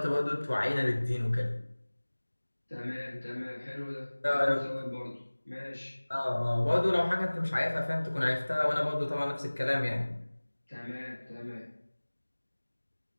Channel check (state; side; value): inverted; both; correlation -1.00